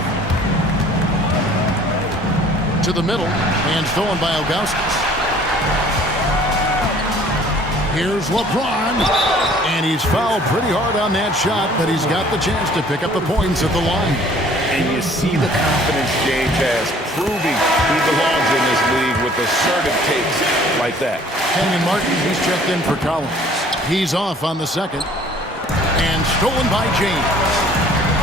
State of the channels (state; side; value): normal; both; correlation 0.54